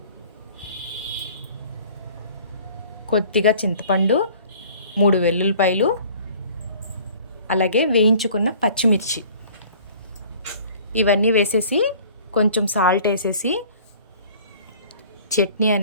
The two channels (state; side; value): inverted; both; correlation -0.49